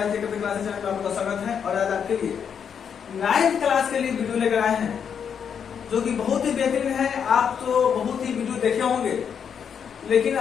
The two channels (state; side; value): quieter; right; 7.5 dB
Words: channel में आपका स्वागत है। और आज आपके लिए 9th क्लास के लिए वीडियो लेकर आए हैं जो कि बहुत ही बेहतरीन है। आप तो बहुत ही वीडियो देखे होंगे, लेकिन